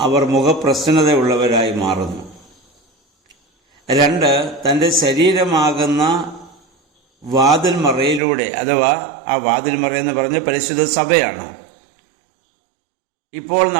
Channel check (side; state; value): left; drops out; at 8.2 s